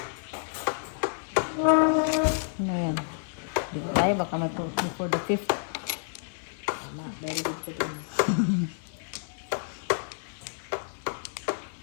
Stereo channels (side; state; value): right; silent; digital silence